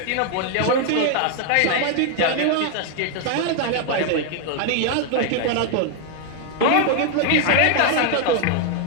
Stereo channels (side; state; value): both; different; correlation 0.00